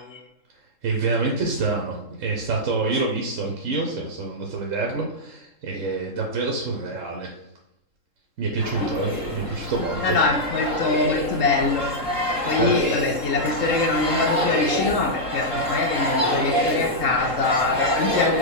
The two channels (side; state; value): left; late; 3.7 ms